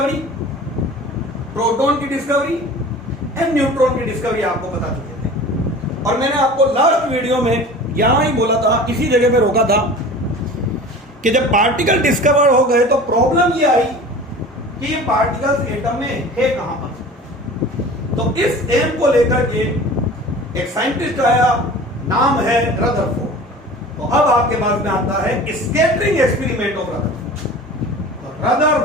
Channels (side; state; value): both; normal; correlation 0.40